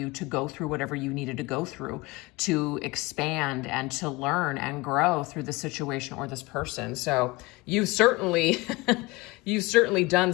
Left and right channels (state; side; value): quieter; right; 22.6 dB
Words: to go through whatever you needed to go through to expand and to learn and grow through the situation or this person. So you've certainly done